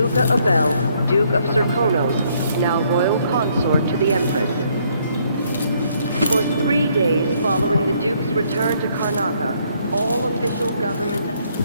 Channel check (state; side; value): inverted; both; correlation -0.68